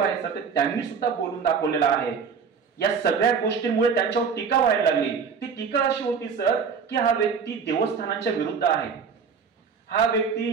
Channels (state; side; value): quieter; left; 6.0 dB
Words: आहे सर, त्यांनी सुद्धा बोलून दाखवलेलं आहे। या सगळ्या गोष्टींमुळे त्यांच्यावर टीका व्हायला लागली। ती टीका अशी होती सर की हा व्यक्ती देवस्थानांच्या विरुद्ध आहे, हा